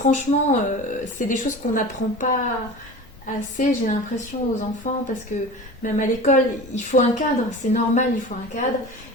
c'est des choses qu'on n'apprend pas assez, j'ai l'impression, aux enfants, parce que même à l'école il faut un cadre, c'est normal, il faut un cadre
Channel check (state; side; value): normal; both; correlation 0.35